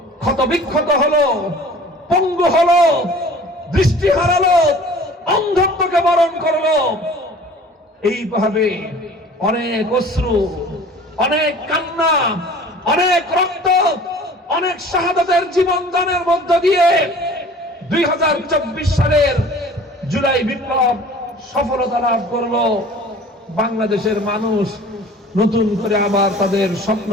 ক্ষতবিক্ষত হলো, পঙ্গু হলো, দৃষ্টি হারালো, অন্ধত্বকে বরণ করলো। এইভাবে অনেক অশ্রু, অনেক কান্না, অনেক রক্ত, অনেক শাহাদাতের জীবন দানের মধ্য দিয়ে 2024 সালের জুলাই বিপ্লব সফলতা লাভ করলো। বাংলাদেশের মানুষ নতুন করে আবার তাদের স্বপ্ন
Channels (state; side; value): normal; both; correlation 0.46